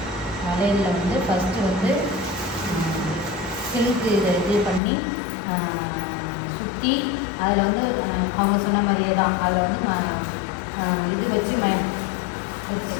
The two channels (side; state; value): right; drops out; at 4.8 s